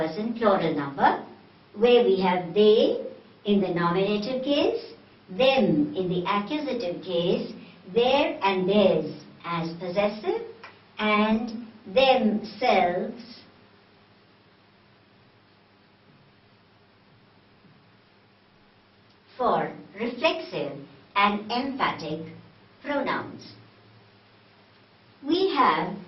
plural number, where we have they in the nominative case, them in the accusative case, their and theirs as possessive, and themselves for reflexive and emphatic pronouns. We have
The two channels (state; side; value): identical; both; correlation 1.00